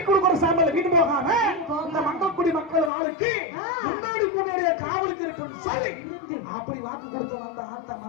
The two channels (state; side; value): drops out; right; at 2.9 s